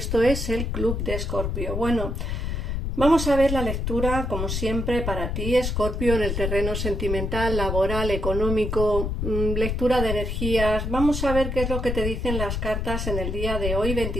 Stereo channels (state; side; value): noise; left; rumble, 2 dB below the sound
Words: es el Club de Escorpio. Bueno, vamos a ver la lectura, como siempre, para ti, Escorpio, en el terreno sentimental, laboral, económico, lectura de energías. Vamos a ver qué es lo que te dicen las cartas en el día de hoy,